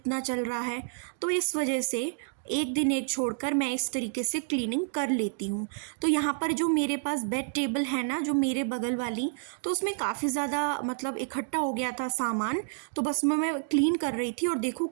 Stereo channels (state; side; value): silent; left; digital silence